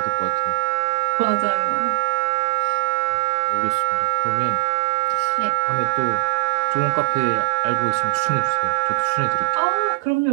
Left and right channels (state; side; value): quieter; left; 32.9 dB